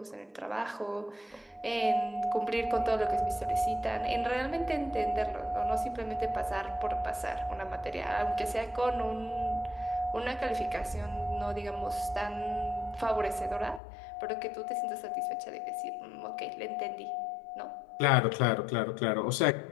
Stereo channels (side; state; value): right; drops out; at 13.8 s